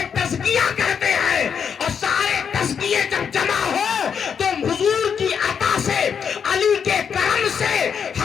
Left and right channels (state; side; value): quieter; right; 7.1 dB